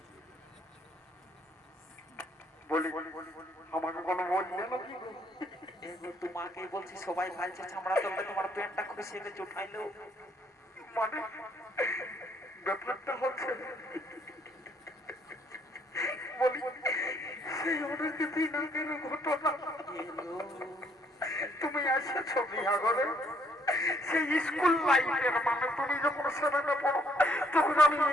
বলি আমাকে কোনো বললে নাকি এগো তোমাকেই বলছি সবাই ভালছে চামড়া তোলবে তোমার প্যান্টটা খুশি গেছে উঠাইলো মানে ব্যাপারটা হচ্ছে বলি সেই অনেক দিন আগের ঘটনা তুমি এসেছো বিয়া করে সেই স্কুল লাইফের মানে তুমি যখন সেভেনে পড়ো তখন আমি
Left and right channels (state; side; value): normal; both; correlation 0.67